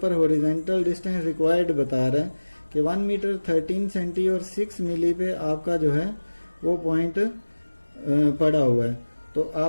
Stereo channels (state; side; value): inverted; both; correlation -1.00